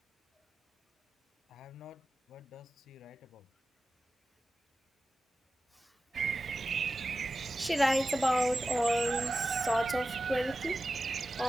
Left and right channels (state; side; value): normal; both; correlation 0.93